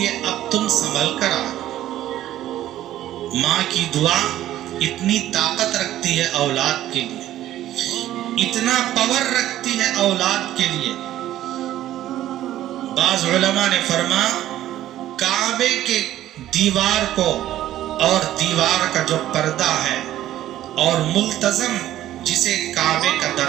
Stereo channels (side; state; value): left; quieter; 13.3 dB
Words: اب تم سنبھل کر آؤ۔ ماں کی دعا اتنی طاقت رکھتی ہے اولاد کے لیے، اتنا پاور رکھتی ہے اولاد کے لیے۔ بعض علماء نے فرمایا کعبے کے دیوار کو اور دیوار کا جو پردہ ہے اور ملتزم جسے کعبے کا